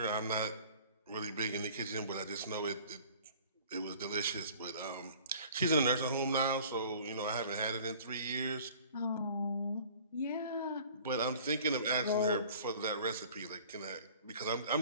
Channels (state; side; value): inverted; both; correlation -0.48